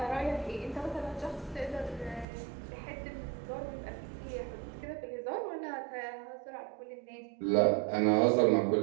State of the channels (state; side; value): drops out; left; at 2.2 s